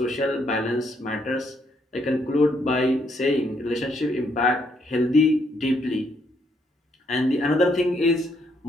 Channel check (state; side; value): normal; both; correlation 0.73